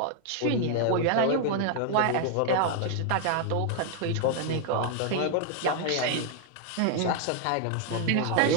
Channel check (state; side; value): different; both; correlation 0.00